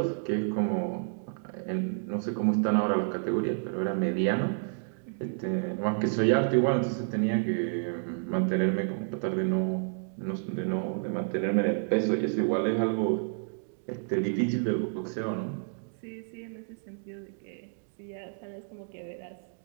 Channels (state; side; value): silent; left; digital silence